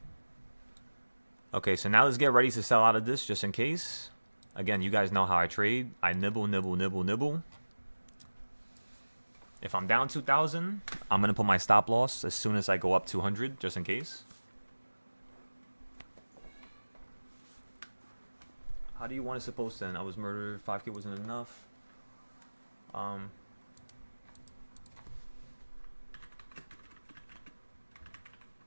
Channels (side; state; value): both; inverted; correlation -1.00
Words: Okay, so now let's get ready to sell out of this just in case. Again, you guys know how I trade. I nibble, nibble, nibble, nibble. If I'm down 2,000, I'm going to put my stop loss as soon as I go up 200 just in case. How do you want it supposed to end? I was murdered. 5K wasn't enough.